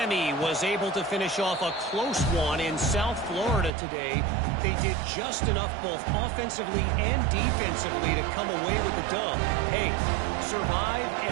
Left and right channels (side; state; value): left; drops out; at 3.7 s